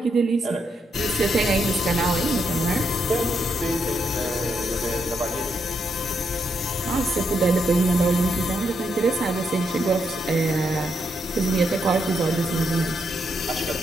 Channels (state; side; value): normal; both; correlation 0.79